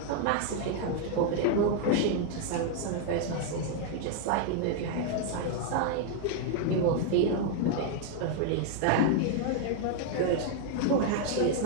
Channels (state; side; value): different; both; correlation 0.00